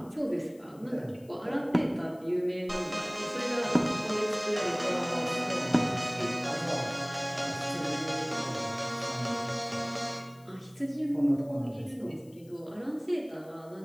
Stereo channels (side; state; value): left; noise; hiss, 28 dB below the sound